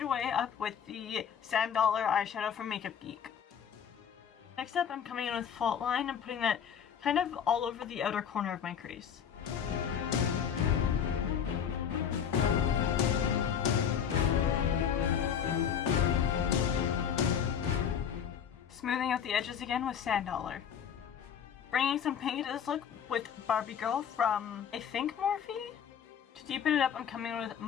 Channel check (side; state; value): right; quieter; 8.1 dB